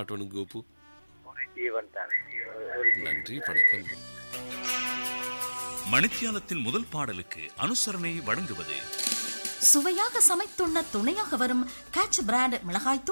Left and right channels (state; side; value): inverted; both; correlation -1.00